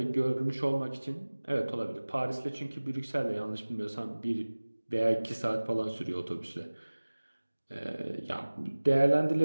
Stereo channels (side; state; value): both; inverted; correlation -1.00